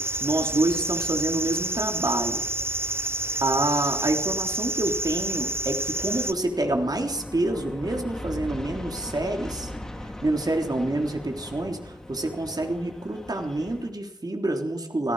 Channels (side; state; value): both; normal; correlation 0.63